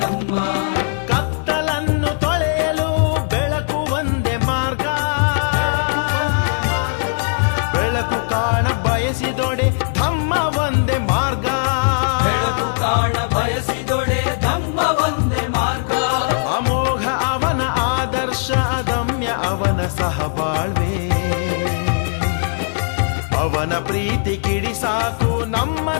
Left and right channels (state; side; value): silent; right; 66 dB below the other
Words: ಕತ್ತಲನ್ನು ತೊಳೆಯಲು ಬೆಳಕು ಒಂದೇ ಮಾರ್ಗ ಬೆಳಕು ಕಾಣ ಬಯಸಿದೊಡೆ ಧಮ್ಮ ಒಂದೇ ಮಾರ್ಗ ಬೆಳಕು ಕಾಣ ಬಯಸಿದೊಡೆ ಧಮ್ಮ ಒಂದೇ ಮಾರ್ಗ ಅಮೋಘ ಅವನ ಆದರ್ಶ ಅದಮ್ಯ ಅವನ ಸಹಬಾಳ್ವೆ ಅವನ ಪ್ರೀತಿ ಕಿಡಿ ಸಾಕು ನಮ್ಮ